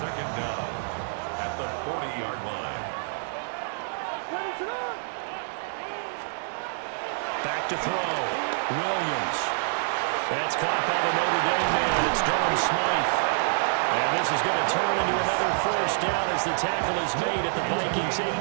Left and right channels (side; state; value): left; silent; digital silence